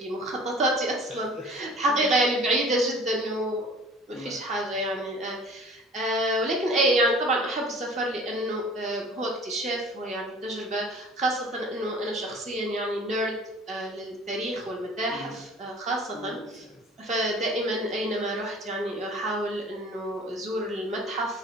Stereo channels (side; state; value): both; normal; correlation 0.47